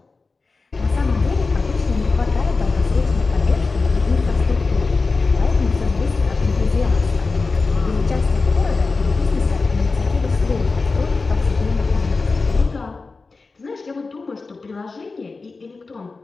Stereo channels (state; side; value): quieter; right; 4.0 dB